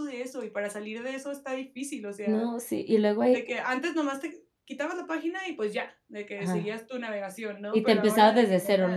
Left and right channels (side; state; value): both; identical; correlation 1.00